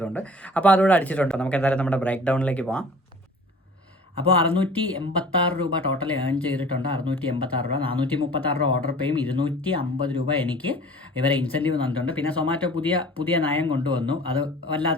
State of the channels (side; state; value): both; normal; correlation 0.46